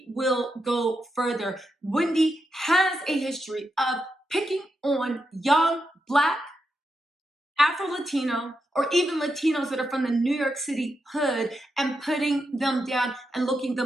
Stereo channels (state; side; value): normal; both; correlation 0.85